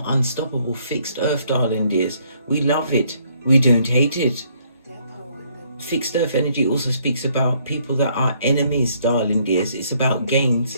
unstoppable. Fixed earth, darling dears. We love it. We don't hate it. Fixed earth energy also speaks about people that are enemies, darling dears. It's about gains,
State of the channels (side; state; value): both; inverted; correlation -0.67